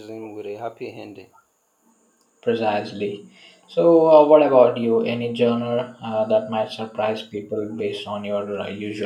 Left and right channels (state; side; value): identical; both; correlation 1.00